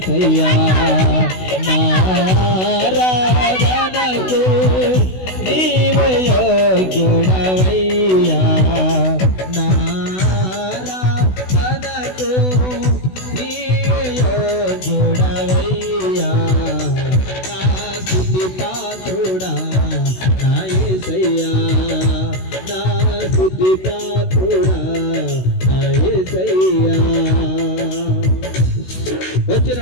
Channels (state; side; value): late; right; 16 ms